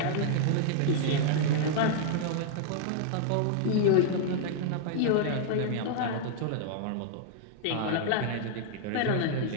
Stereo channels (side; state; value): both; different; correlation -0.01